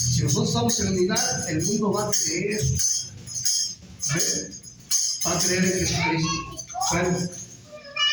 nosotros estamos en unidad, el mundo va a creer. ¿Amén? Va a creer en Jesucristo. Bueno,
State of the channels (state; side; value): identical; both; correlation 1.00